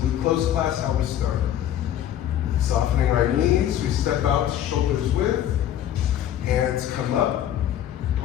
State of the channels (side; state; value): right; quieter; 11.1 dB